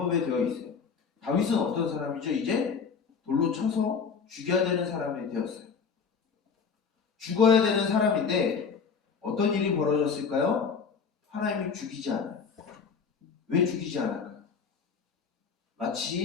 되어 있어요. 다윗은 어떤 사람이죠? 이제 돌로 쳐서 죽여야 되는 사람이 되었어요. 죽어야 되는 사람인데 어떤 일이 벌어졌을까요? 하나님이 죽이지 않아요. 왜 죽이지 않을까요?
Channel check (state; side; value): quieter; right; 5.8 dB